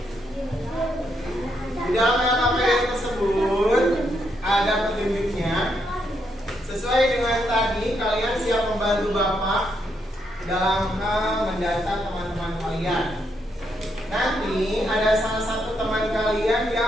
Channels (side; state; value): both; normal; correlation 0.78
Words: Di dalam LKPD tersebut ada petunjuknya. Sesuai dengan tadi, kalian siap membantu Bapak dalam hal mendata teman-teman kalian. Nanti ada salah satu teman kalian